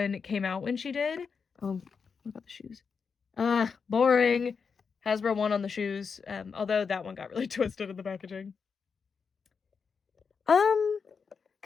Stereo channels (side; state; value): right; quieter; 5.7 dB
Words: came out when she did... Oh, what about the shoes? Boring. Hasbro one on the shoes. Although that one got really twisted in the packaging.